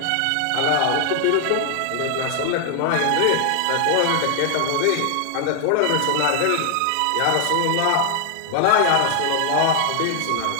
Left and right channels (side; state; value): both; different; correlation 0.00